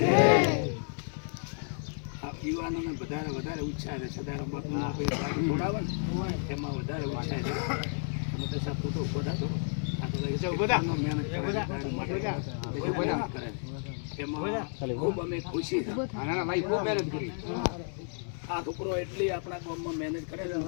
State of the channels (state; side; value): silent; right; 57 dB below the other